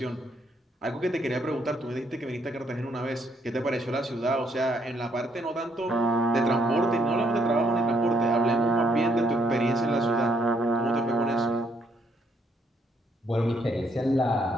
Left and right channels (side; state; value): both; normal; correlation 0.71